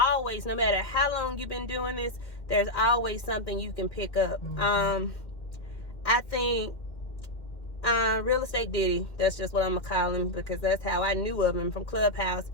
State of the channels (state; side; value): late; right; 2.1 ms